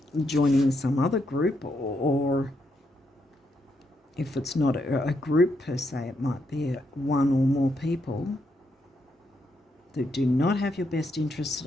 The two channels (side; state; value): both; normal; correlation 0.79